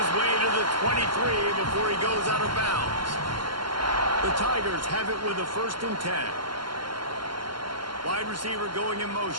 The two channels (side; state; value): left; late; 0.72 ms